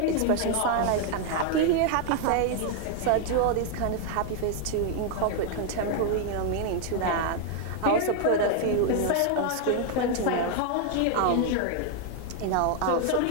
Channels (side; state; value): both; different; correlation 0.00